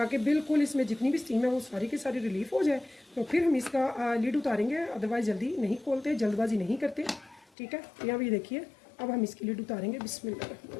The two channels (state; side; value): drops out; right; at 7.5 s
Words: बिल्कुल इसमें जितनी भी स्टीम है वो सारी की सारी रिलीफ हो जाए। तो फिर हम इसका लिड उतारेंगे, अदरवाइज़ जल्दी नहीं खोलते, जल्दबाजी नहीं करते, ठीक है। यहाँ भी देखिए अब हम इसकी लिड उतारेंगे बिस्मिल्लाह।